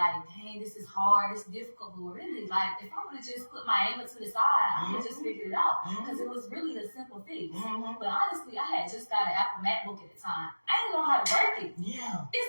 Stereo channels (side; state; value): both; inverted; correlation -1.00